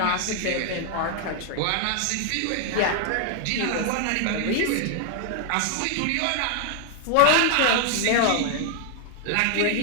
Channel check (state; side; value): different; both; correlation 0.00